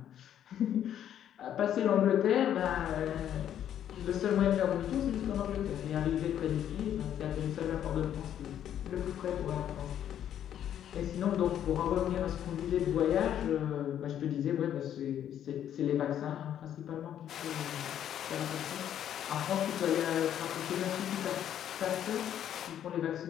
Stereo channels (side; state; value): right; quieter; 10.3 dB